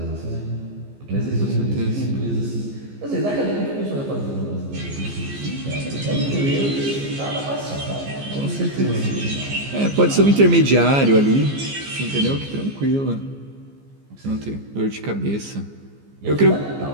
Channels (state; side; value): late; left; 15 ms